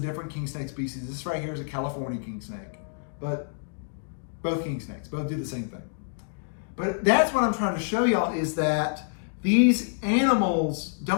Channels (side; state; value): right; silent; digital silence